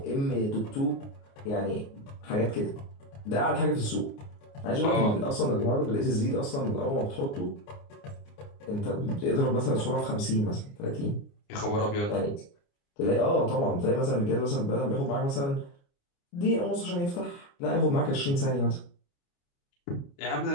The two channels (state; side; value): late; right; 29 ms